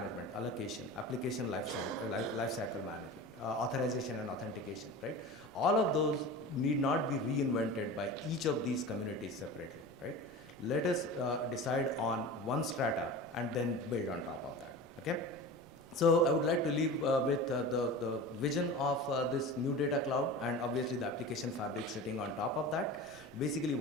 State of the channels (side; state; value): right; noise; rumble, 27 dB below the sound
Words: allocation, application lifecycle management, authorization and authentication, right? All of those need not be reinvented by each of these communities separately, right? Let us decide on one strata and then build on top of that, okay? So I would like to leave with the vision of this new data cloud, and obviously the application fabric sitting on top of that. Basically